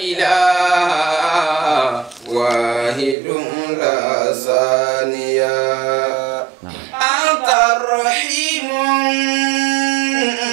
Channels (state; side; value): drops out; left; at 3.2 s